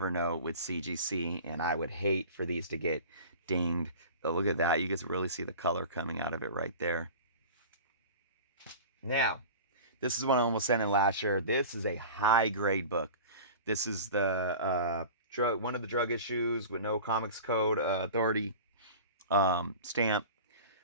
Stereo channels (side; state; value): both; inverted; correlation -0.37